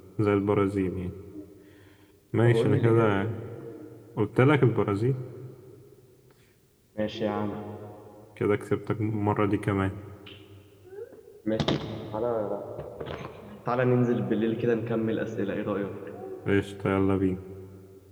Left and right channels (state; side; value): identical; both; correlation 1.00